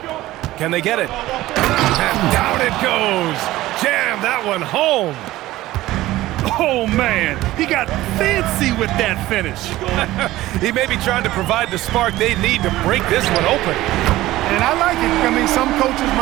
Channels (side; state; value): left; quieter; 16.5 dB